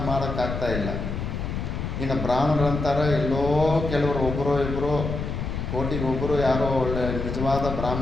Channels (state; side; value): noise; left; rumble, 4 dB below the sound